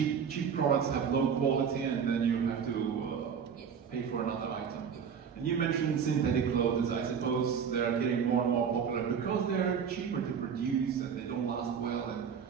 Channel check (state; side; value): quieter; left; 7.1 dB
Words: products have low quality and then you have to pay for another item. And you mentioned synthetic clothes. I suppose they are getting more and more popular because they're cheaper to produce and they don't last well and